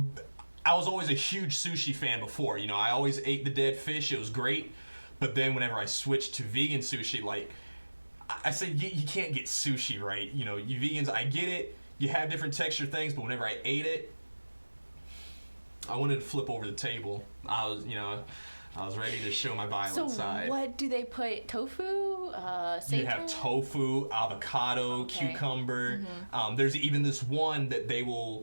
was always a huge sushi fan before. You know, I always ate the dead fish. It was great. But then whenever I switched to vegan sushi, like, I said you can't get sushi right. You know, you vegans, I get it. You have different texture things, but whenever I ate it, I wanted to flip over the table. I was ready to show my violent side. So what do they put? Tofu? Seitan? You have tofu, avocado, cucumber. There's even this one that they will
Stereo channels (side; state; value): both; inverted; correlation -1.00